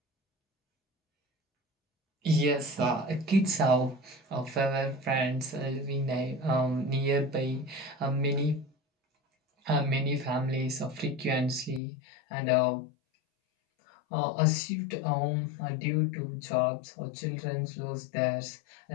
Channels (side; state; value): right; drops out; at 11.8 s